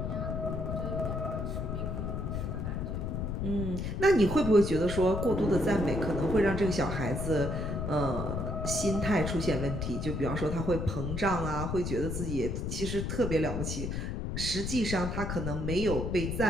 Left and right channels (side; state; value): left; noise; rumble, 3 dB below the sound